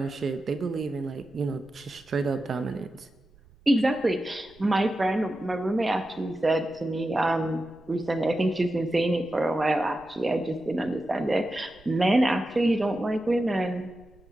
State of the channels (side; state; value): right; noise; rumble, 28 dB below the sound